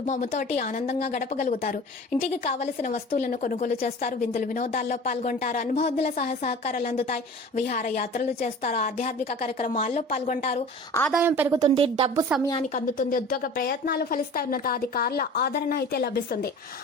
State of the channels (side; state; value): both; normal; correlation 0.40